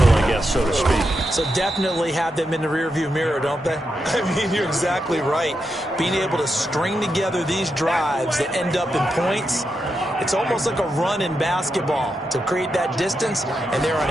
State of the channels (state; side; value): normal; both; correlation 0.85